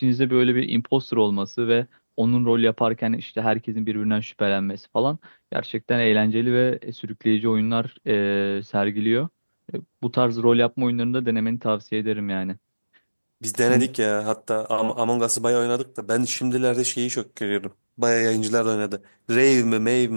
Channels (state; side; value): inverted; both; correlation -1.00